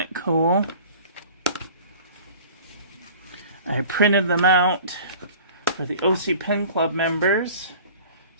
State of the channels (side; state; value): both; inverted; correlation -0.44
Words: cool? I printed them out for the OC Pen Club members